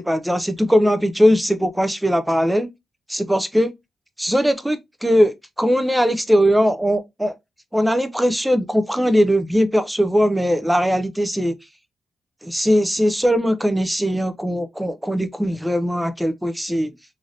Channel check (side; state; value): both; normal; correlation 0.96